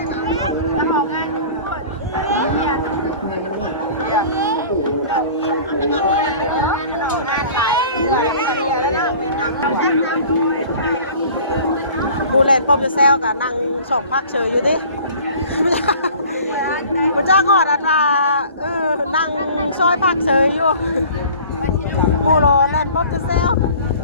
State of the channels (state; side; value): inverted; both; correlation -0.45